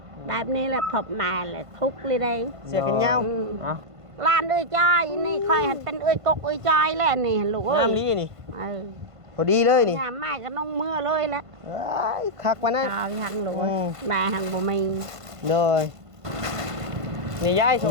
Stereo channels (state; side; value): late; left; 1.5 ms